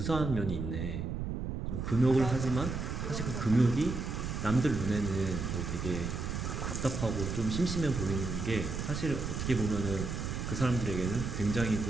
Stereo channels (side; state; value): right; noise; rumble, 3 dB below the sound